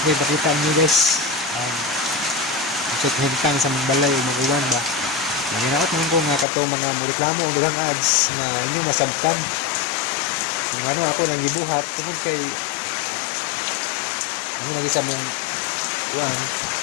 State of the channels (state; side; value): drops out; right; at 6.5 s